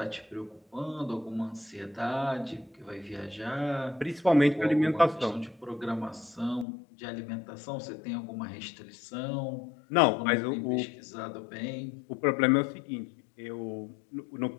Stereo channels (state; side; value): drops out; right; at 6.7 s